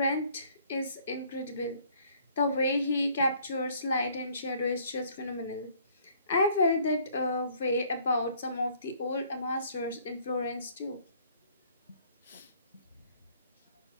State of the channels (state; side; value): inverted; both; correlation -0.60